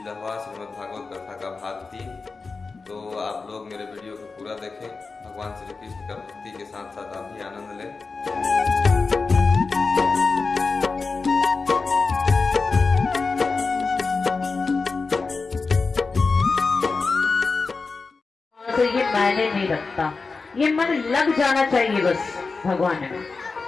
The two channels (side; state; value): right; quieter; 4.3 dB